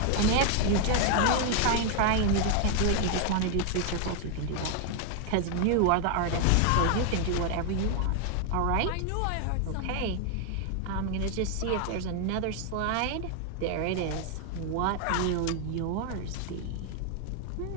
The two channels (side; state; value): both; different; correlation 0.00